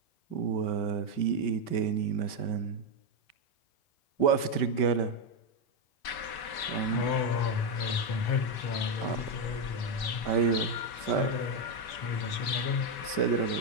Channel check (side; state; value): right; late; 5.2 ms